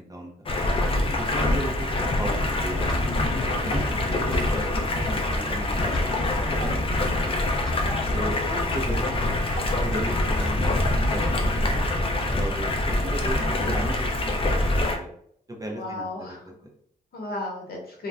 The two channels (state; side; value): normal; both; correlation 0.56